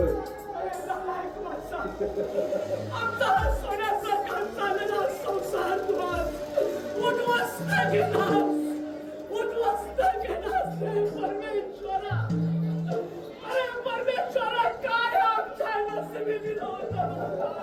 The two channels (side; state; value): both; identical; correlation 1.00